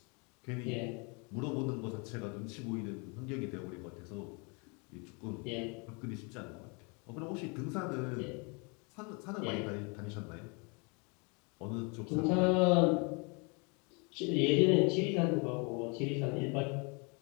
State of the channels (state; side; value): quieter; right; 32.6 dB